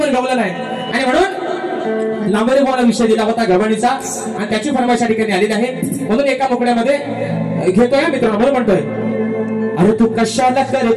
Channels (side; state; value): both; identical; correlation 1.00